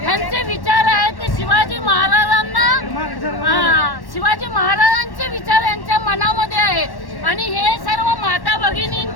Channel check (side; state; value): right; late; 1.1 ms